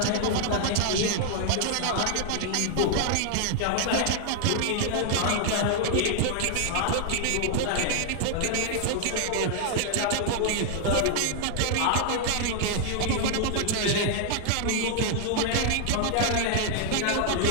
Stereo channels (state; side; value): different; both; correlation 0.00